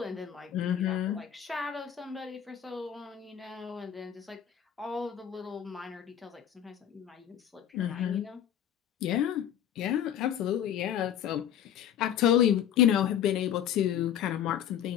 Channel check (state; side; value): quieter; right; 9.8 dB